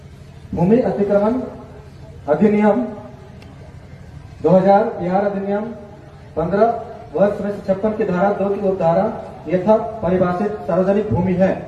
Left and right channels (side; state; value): both; identical; correlation 1.00